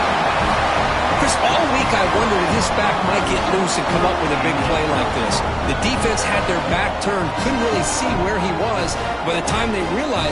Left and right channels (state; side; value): identical; both; correlation 1.00